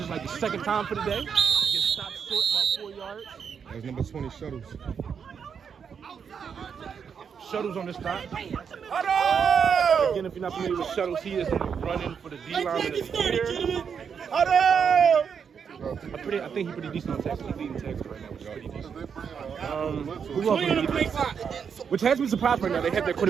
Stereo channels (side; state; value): left; quieter; 6.9 dB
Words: like the second time for the day. Gets stopped short about 4 yards. That was number 20 Shuttles. Shuttles on the stop. Again, if you're not familiar with Shuttles, he is running for the D line in the theater. I think he's pretty decent on tackle. He's leading tackles right now, which is pretty decent. Who else on the defense? Which has me surprised right now. They have their